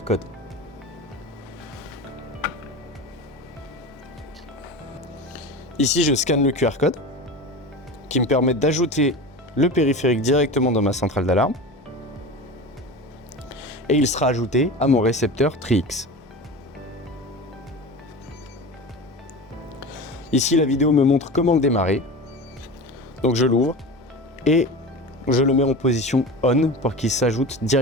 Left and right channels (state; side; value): normal; both; correlation 0.30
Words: code. Ici, je scanne le QR code qui me permet d'ajouter le périphérique directement dans ma centrale d'alarme, et il sera ajouté à mon récepteur TRIX. Ici, la vidéo me montre comment le démarrer. Donc je l'ouvre et je le mets en position on pour qu'il s'ajoute